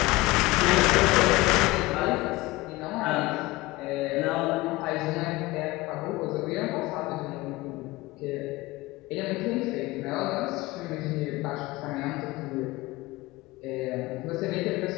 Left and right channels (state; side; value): quieter; right; 20.5 dB